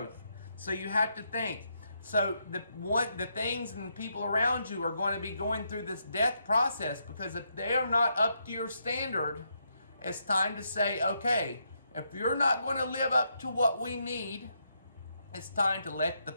So you have to think. So the things and the people around you are going to be going through this death process, because if they are not up to your standard, it's time to say, okay, if you're not going to live up to what we need, it's time to let the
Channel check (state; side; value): inverted; both; correlation -0.79